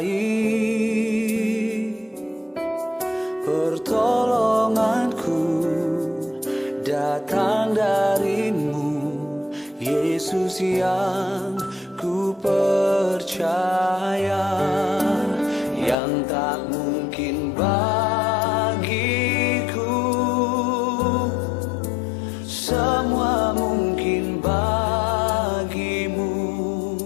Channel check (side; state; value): right; drops out; at 16.0 s